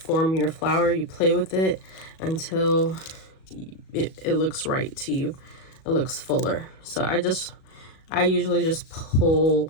your flower. You play with it until it looks right to you. It looks fuller. So I usually just pull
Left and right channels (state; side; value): late; right; 37 ms